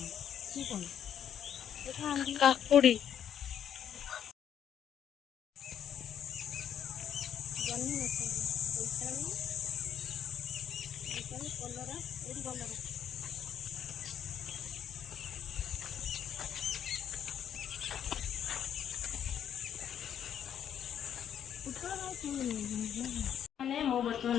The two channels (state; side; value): quieter; right; 9.3 dB